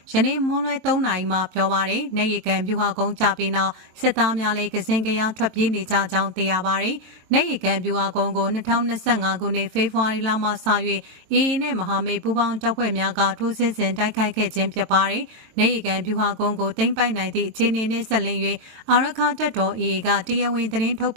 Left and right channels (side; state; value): left; late; 22 ms